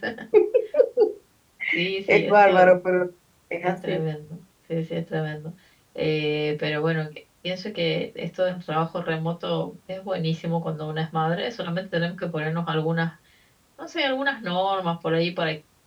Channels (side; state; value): both; identical; correlation 1.00